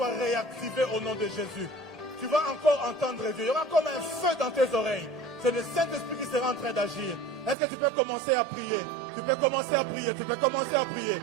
réactivés au nom de Jésus. Tu vas encore entendre Dieu. Il y aura comme un feu dans tes oreilles. C'est le Saint-Esprit qui sera en train d'agir. Est-ce que tu peux commencer à prier? Tu peux commencer à prier. Tu peux commencer à prier.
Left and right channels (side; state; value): left; drops out; at 7.6 s